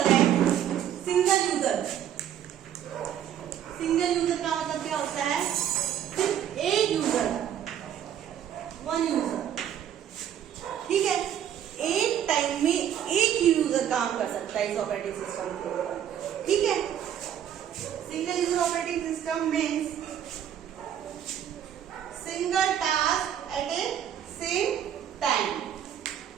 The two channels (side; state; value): left; quieter; 10.0 dB